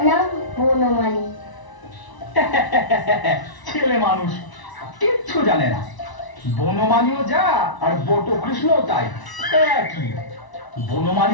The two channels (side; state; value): right; late; 1.0 ms